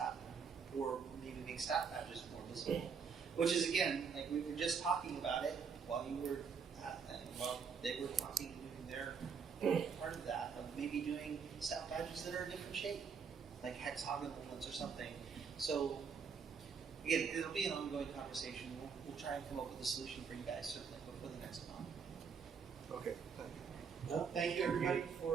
or maybe make staff badges more visible. Which is, again, like we were just talking about it while you were while they were talking and doing their part of that, of maybe doing staff badges that are a different shape, like hexagonal ones or something. So again, it'll be an ongoing conversation. We'll try and come up with a solution for you guys, certainly, before the next con. Okay, thank you. Well, thank you everybody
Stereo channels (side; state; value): left; quieter; 6.1 dB